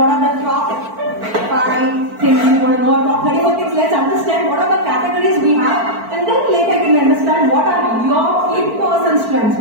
are the top 5 things you want to know, top 34 things. Let's understand what are the categories we have, and then later you can understand what are your in-person strengths,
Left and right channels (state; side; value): late; left; 4.5 ms